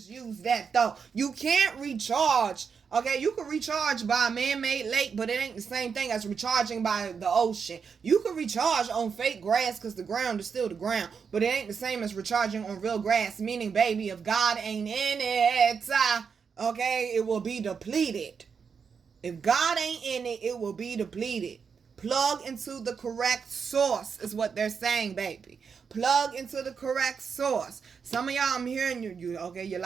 use that, though? You can't recharge. Okay, you can recharge by a man-made lake, but it ain't the same thing as recharging by the ocean. You can recharge on fake grass because the ground is still the ground, but it ain't the same as recharging on real grass, meaning, baby, if God ain't in it, okay, it will be depleted. If God ain't in it, it will be depleted. Plug into the correct source is what they're saying, baby. Plug into the correct source. Some of y'all, I'm hearing you, okay, you're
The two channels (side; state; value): left; quieter; 6.1 dB